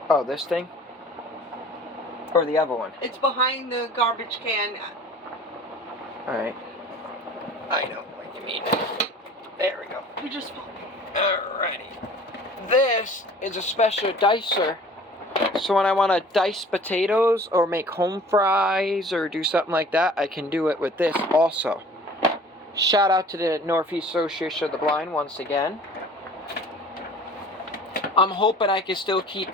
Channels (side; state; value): both; normal; correlation 0.47